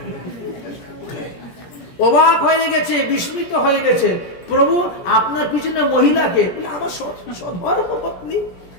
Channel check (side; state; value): right; late; 17 ms